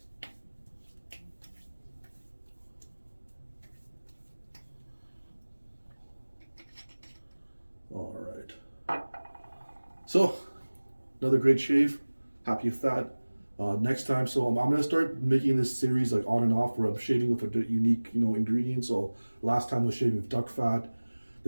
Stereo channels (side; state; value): both; inverted; correlation -1.00